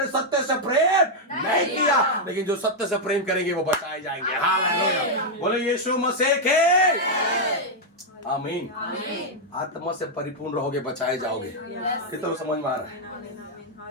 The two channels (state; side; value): normal; both; correlation -0.02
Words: सत्य से प्रेम प्रेम नहीं किया, लेकिन जो सत्य से प्रेम करेंगे वो बचाए जाएंगे। हालेलुया, बोलो यीशु मसीह के आमीन। आत्मा से परिपूर्ण रहोगे, बचाए जाओगे। कितना समझ में आ रहा